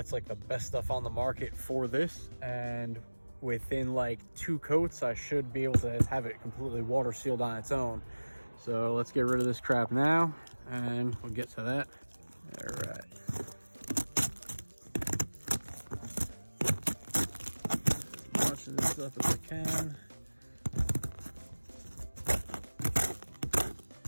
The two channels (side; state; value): both; inverted; correlation -1.00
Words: like the best stuff on the market for this, and within like 2 coats I should be able to have it completely water sealed on its own. So let's get rid of this crap now and we'll get to that. All right. As much of this stuff as I can.